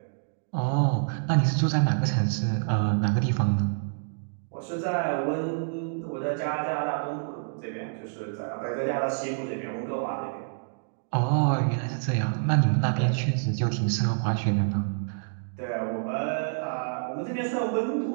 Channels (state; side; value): silent; left; digital silence